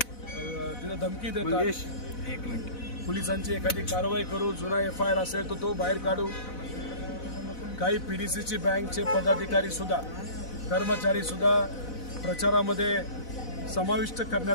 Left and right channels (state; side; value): late; right; 4.0 ms